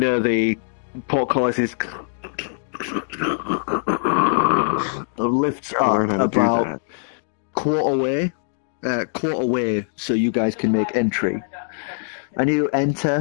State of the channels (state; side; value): silent; right; digital silence